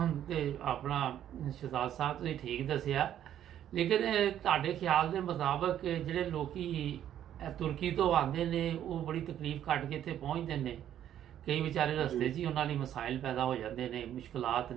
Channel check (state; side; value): quieter; left; 10.8 dB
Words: ਤੇ ਆਪਣਾ ਸ਼ਹਿਜ਼ਾਦ ਸਾਹਿਬ ਤੁਸੀਂ ਠੀਕ ਦੱਸਿਆ, ਲੇਕਿਨ ਤੁਹਾਡੇ ਖਿਆਲ ਦੇ ਮੁਤਾਬਕ ਜਿਹੜੇ ਲੋਕੀ ਤੁਰਕੀ ਤੋਂ ਆਉਂਦੇ ਨੇ ਉਹ ਬੜੀ ਤਕਲੀਫ ਕੱਟ ਕੇ ਇੱਥੇ ਪਹੁੰਚਦੇ ਨੇ, ਕਈ ਵਿਚਾਰੇ जी ਰਸਤੇ 'ਚ ਹੀ ਉਹਨਾਂ ਲਈ ਮਸਾਇਲ ਪੈਦਾ ਹੋ ਜਾਂਦੇ ਨੇ, ਮੁਸ਼ਕਲਾਤ